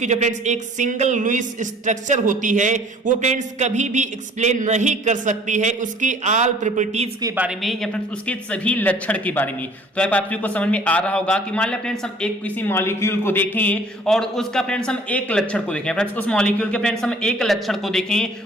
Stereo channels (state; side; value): normal; both; correlation 0.53